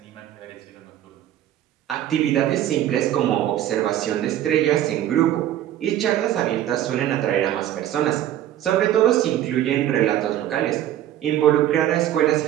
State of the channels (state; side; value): quieter; left; 12.2 dB